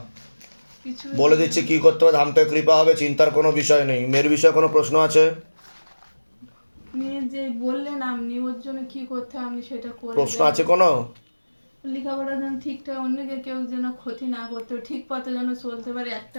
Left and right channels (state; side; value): inverted; both; correlation -1.00